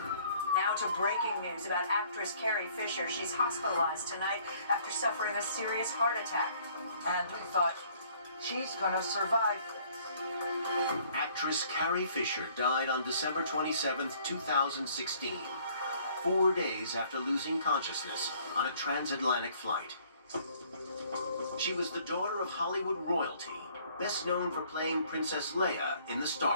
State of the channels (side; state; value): both; inverted; correlation -0.59